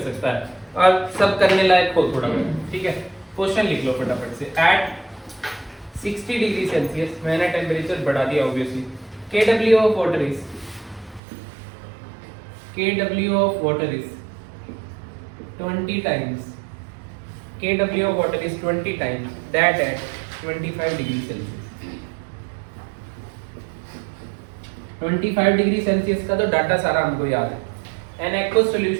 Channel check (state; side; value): drops out; left; at 11.2 s